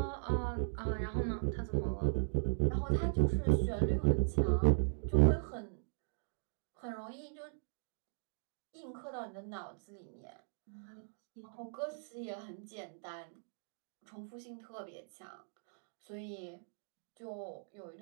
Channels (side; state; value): left; silent; digital silence